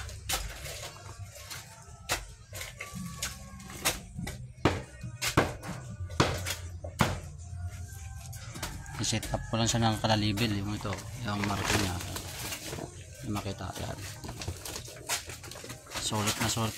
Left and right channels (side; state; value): both; identical; correlation 1.00